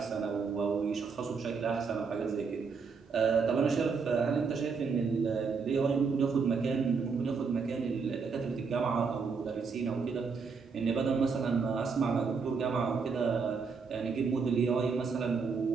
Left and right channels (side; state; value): left; quieter; 5.2 dB